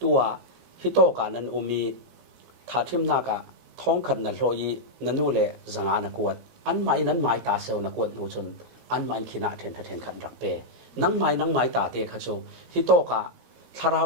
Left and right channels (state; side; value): late; left; 17 ms